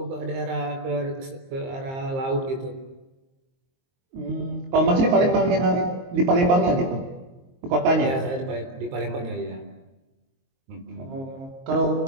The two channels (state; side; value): late; left; 22 ms